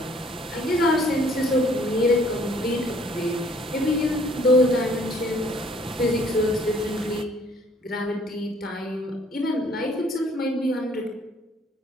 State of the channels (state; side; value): normal; both; correlation 0.60